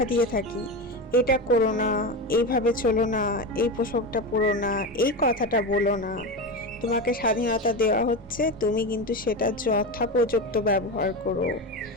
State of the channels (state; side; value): normal; both; correlation 0.19